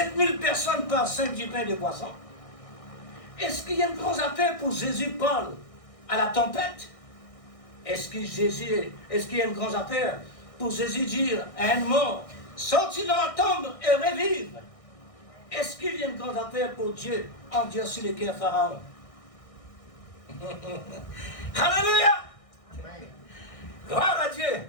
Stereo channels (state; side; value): late; right; 1.6 ms